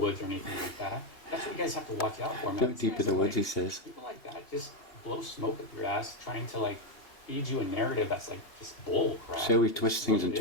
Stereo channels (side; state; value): right; late; 2.8 ms